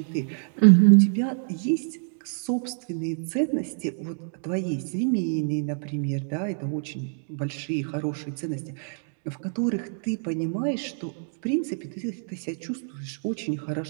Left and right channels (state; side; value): silent; left; 60 dB below the other